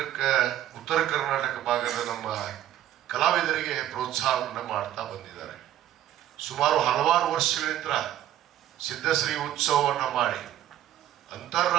ಉತ್ತರ ಕರ್ನಾಟಕ ಭಾಗದ ನಮ್ಮ ಕಲಾವಿದರಿಗೆ ಪ್ರೋತ್ಸಾಹವನ್ನು ಮಾಡ್ತಾ ಬಂದಿದ್ದಾರೆ. ಸುಮಾರು ಹಲವಾರು ವರ್ಷಗಳಿಂದ ಸಿದ್ಧಶ್ರೀ ಉತ್ಸವವನ್ನು ಮಾಡಿ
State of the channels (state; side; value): quieter; left; 12.2 dB